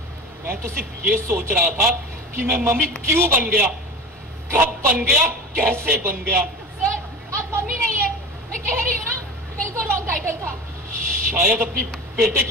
मैं तो सिर्फ ये सोच रहा था कि मैं मम्मी क्यों बन गया, कब बन गया, कैसे बन गया। सर, आप मम्मी नहीं है, मैं कह रही हूँ ना, बिल्कुल रॉन्ग टाइटल था। शायद अपनी बेटे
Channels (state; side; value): normal; both; correlation 0.32